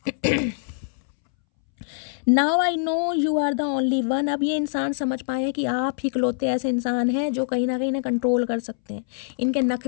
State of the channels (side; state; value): right; silent; 63 dB below the other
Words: Now I know you are the only one. अब ये इंसान समझ पाए कि आप ही इकलौते ऐसे इंसान हैं जो कहीं ना कंट्रोल कर सकते हैं, इनके